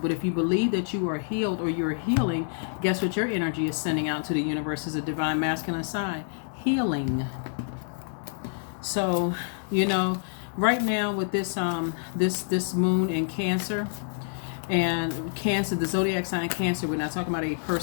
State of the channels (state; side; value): silent; right; digital silence